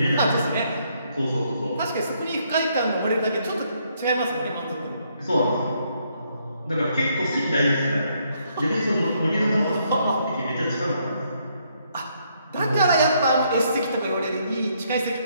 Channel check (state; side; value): inverted; both; correlation -0.72